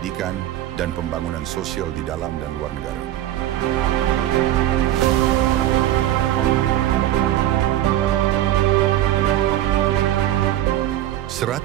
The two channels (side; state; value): left; quieter; 13.1 dB